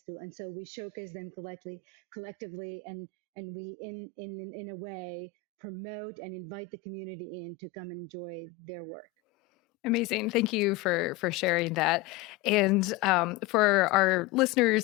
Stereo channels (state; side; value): quieter; right; 12.0 dB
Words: to, and so we showcase them collectively, and we in a way promote and invite the community in to come enjoy their work. Amazing. Thank you for sharing that. And for our